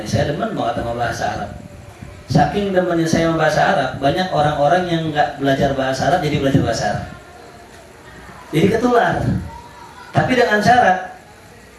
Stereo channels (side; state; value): both; identical; correlation 1.00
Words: saya demen banget sama bahasa Arab. Saking demennya saya bahasa Arab, banyak orang-orang yang nggak belajar bahasa Arab jadi belajar bahasa Arab. Jadi ketular. Tapi dengan syarat